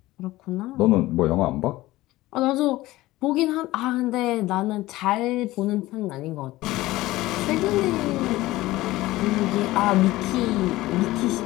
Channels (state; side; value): quieter; right; 17.7 dB